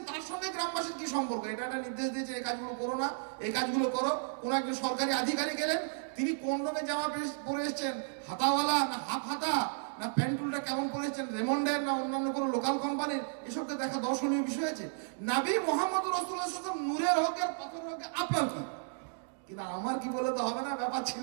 তার সঙ্গে গ্রামবাসীর কি সম্পর্ক? এটা একটা নির্দেশ দিয়েছে এই কাজগুলো করো না, এই কাজগুলো করো। কোন একজন সরকারি আধিকারিক এলেন, তিনি কোন রঙের জামা পরে এসেছেন, হাতাওয়ালা না হাফ হাতা, না প্যান্টুলটা কেমন পরেছেন, রেমন্ডের না অন্যান্য কোনো লোকাল কোম্পানির, এসবকে দেখা দর্শনীয় বিষয় আছে। নবী মুহাম্মদ রাসূলুল্লাহ সাল্লাল্লাহু আলাইহি ওয়াসাল্লাম নূরের হকের পাথরের হকে, আপনার কি? কিন্তু আমার কি বলে তো হবে না, ব্যাপার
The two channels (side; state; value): left; silent; digital silence